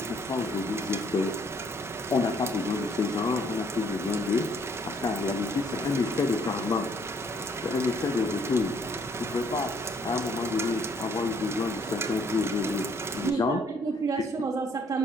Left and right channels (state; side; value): normal; both; correlation 0.65